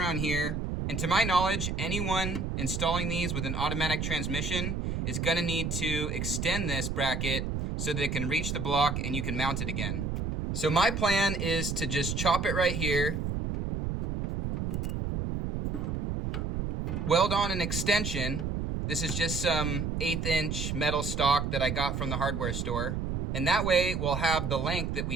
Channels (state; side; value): noise; right; rumble, 2 dB below the sound